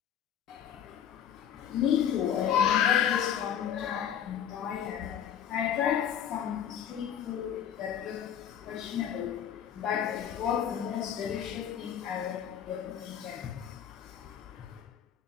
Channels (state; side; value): quieter; right; 9.3 dB